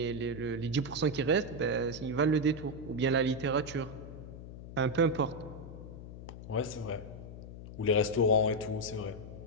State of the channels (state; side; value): noise; left; hum, 12 dB below the sound